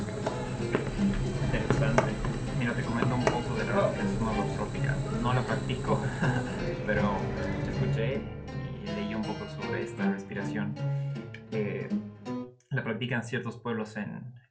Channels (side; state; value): both; identical; correlation 1.00